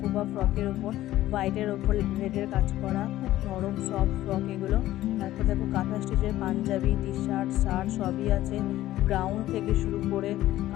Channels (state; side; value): quieter; right; 14.7 dB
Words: ফ্রকের ওপর হোয়াইটের ওপর রেডের কাজ করা, খুব নরম সফট ফ্রক এগুলো। তারপর দেখো, কাঁথা স্টিচের পাঞ্জাবি, টি শার্ট, শার্ট সবই আছে। গ্রাউন থেকে শুরু করে